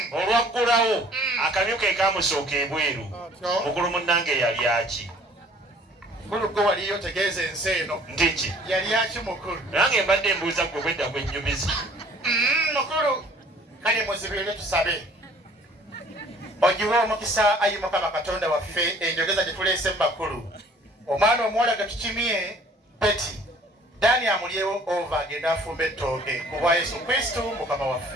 Olwaggulawo akamyu ke kaamusooka ebweru. Mukulu munnange yali aki? Mukulu gwe waliyo tegeeza ensi eno. Ndiki? Yali aki mukulu? Nange mbadde mbuuza gwe bwedda gwennyumiza. Mukulu kale muzibirire tusabe. Ogiwe omukisa ayi Mukama Katonda waffe enjogeza gye tuleese mu bakulu. Omwana omuwala ge tukimye Peti. Dani amulyewo ova agenda afumba ettooke ku bwa Yesu Kristo Mukama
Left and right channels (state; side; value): normal; both; correlation 0.54